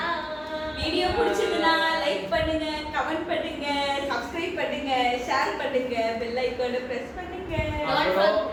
video பிடிச்சதுன்னா லைக் பண்ணுங்க, கமெண்ட் பண்ணுங்க, சப்ஸ்கிரைப் பண்ணுங்க, ஷேர் பண்ணுங்க, பெல் ஐகானை பிரஸ் பண்ணுங்க. அப்புறம்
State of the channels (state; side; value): identical; both; correlation 1.00